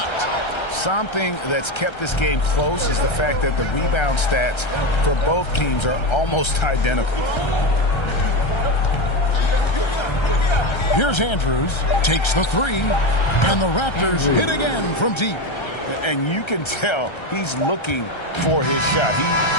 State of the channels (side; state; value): right; late; 1.3 ms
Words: Something that's kept this game close is the fact that the rebound stats for both teams are almost identical. Here's Andrews. Takes the three. And the Raptors hit again from deep. And you can tell he's looking for his shot. He